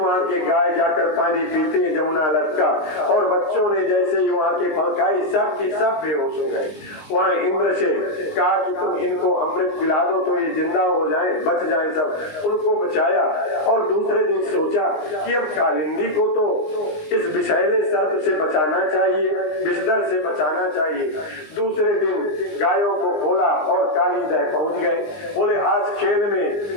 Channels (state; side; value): late; right; 19 ms